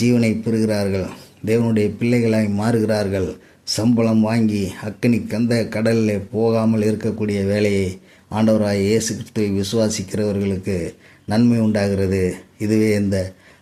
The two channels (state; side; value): identical; both; correlation 1.00